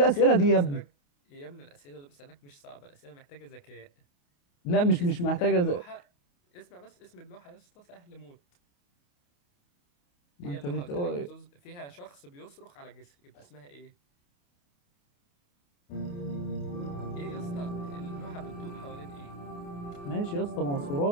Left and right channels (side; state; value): right; late; 28 ms